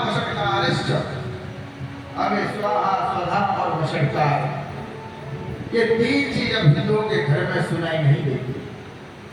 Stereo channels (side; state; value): both; identical; correlation 1.00